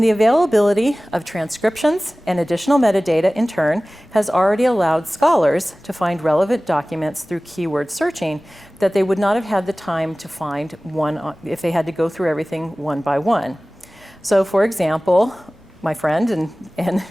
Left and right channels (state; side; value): normal; both; correlation 0.98